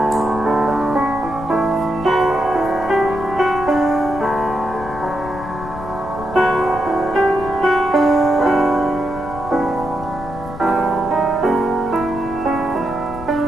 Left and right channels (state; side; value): noise; left; rumble, 13 dB below the sound